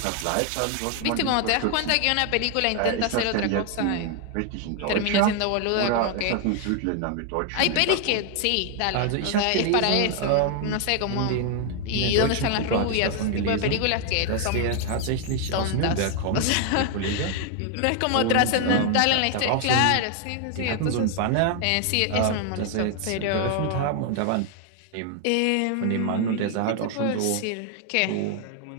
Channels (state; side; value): different; both; correlation 0.00